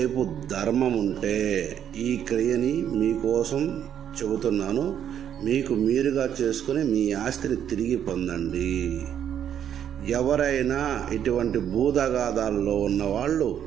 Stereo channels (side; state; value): left; quieter; 9.5 dB